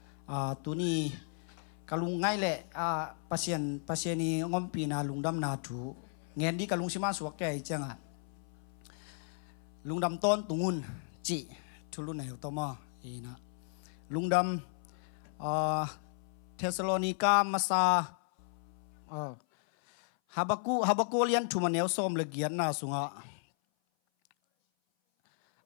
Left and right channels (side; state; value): right; silent; 55 dB below the other